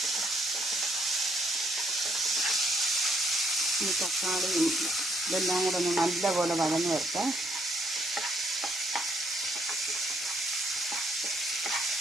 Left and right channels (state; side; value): normal; both; correlation 0.70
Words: ഈ തക്കാളിയും ഇതെല്ലാം കൂടെ ഒന്ന് നല്ലപോലെ വഴന്ന് വരട്ടെ.